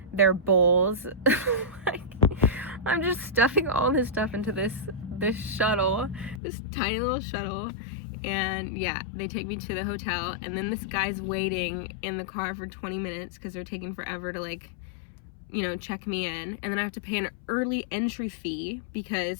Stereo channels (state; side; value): drops out; right; at 6.4 s